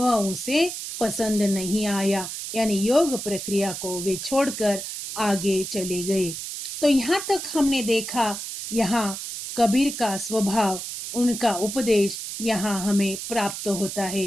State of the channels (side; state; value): right; noise; hiss, 7 dB below the sound